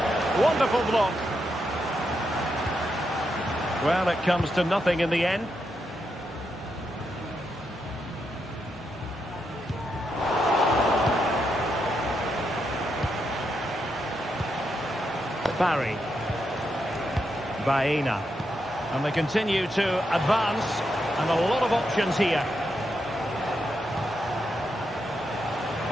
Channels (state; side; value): normal; both; correlation 0.83